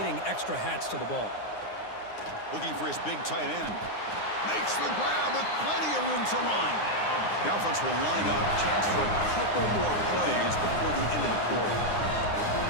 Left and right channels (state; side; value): late; right; 9.7 ms